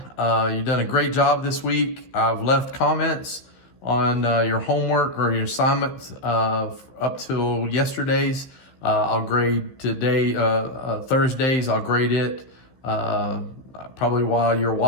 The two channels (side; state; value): right; late; 15 ms